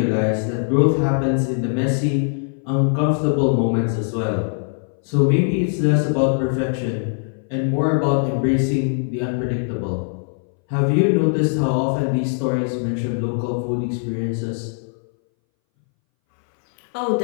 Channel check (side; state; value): right; silent; 62 dB below the other